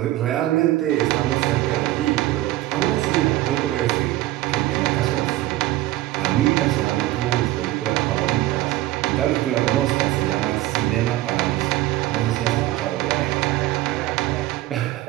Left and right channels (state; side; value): quieter; left; 16.3 dB